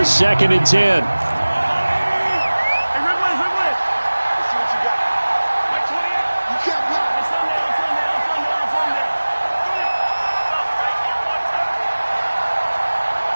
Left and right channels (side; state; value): both; inverted; correlation -1.00